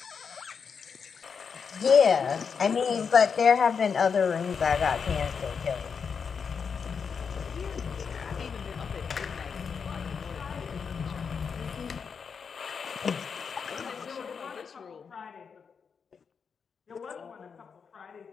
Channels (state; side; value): quieter; right; 6.1 dB